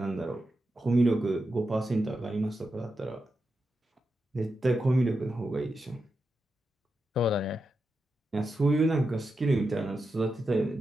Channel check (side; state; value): both; normal; correlation 0.88